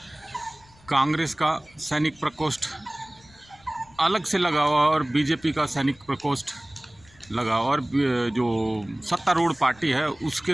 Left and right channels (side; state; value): left; noise; rumble, 27 dB below the sound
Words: कांग्रेस का सैनिक प्रकोष्ठ अलग से लगा हुआ और बीजेपी का सैनिक प्रकोष्ठ लगा, और जो सत्तारूढ़ पार्टी है